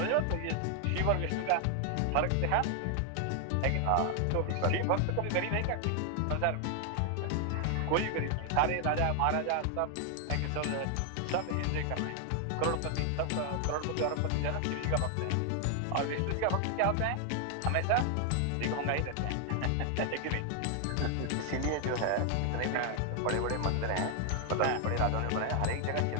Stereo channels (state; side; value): different; both; correlation 0.00